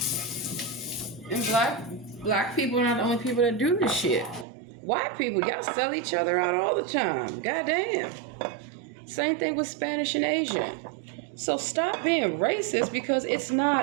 And black people are not the only people that do this shit. White people, y'all sell each other out all the time. Goddamn. Same thing with Spanish and Asian. So stop being racist because it's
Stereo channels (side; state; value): left; drops out; at 4.5 s